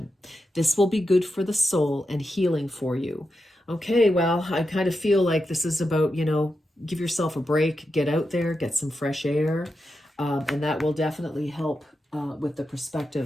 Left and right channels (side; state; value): both; normal; correlation 0.88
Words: This will be good for the soul and healing for you. Okay, well, I kind of feel like this is about, you know, give yourself a break, get out there, get some fresh air, and that will definitely help with the